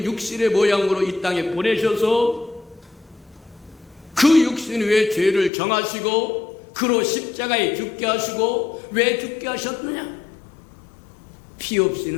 육신의 모양으로 이 땅에 보내셔서 그 육신 위에 죄를 정하시고 그로 십자가에 죽게 하시고, 왜 죽게 하셨느냐? 피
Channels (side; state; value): right; drops out; at 5.5 s